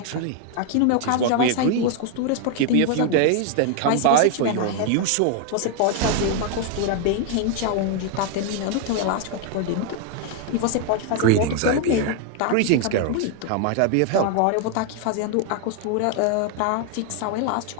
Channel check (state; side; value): different; both; correlation 0.00